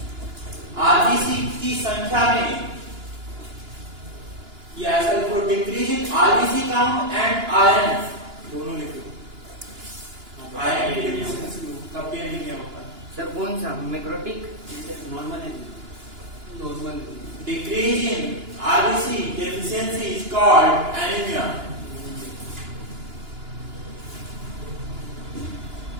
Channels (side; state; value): left; late; 2.9 ms